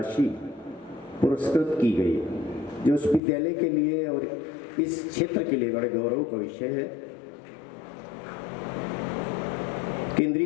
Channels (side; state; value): right; drops out; at 3.2 s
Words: पुरस्कृत की गई, जो उस विद्यालय के लिए और इस क्षेत्र के लिए बड़े गौरव का विषय है।